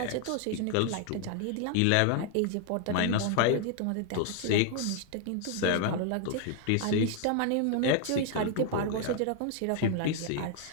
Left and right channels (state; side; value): different; both; correlation 0.00